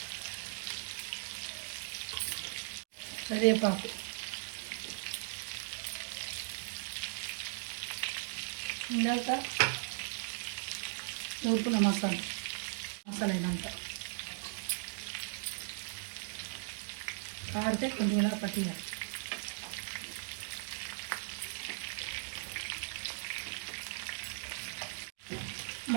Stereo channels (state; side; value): silent; left; digital silence